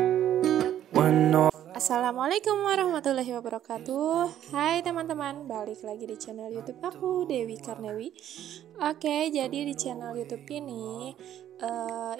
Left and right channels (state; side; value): quieter; left; 11.3 dB